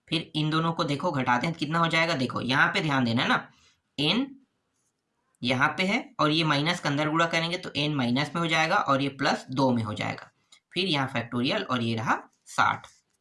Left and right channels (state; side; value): identical; both; correlation 1.00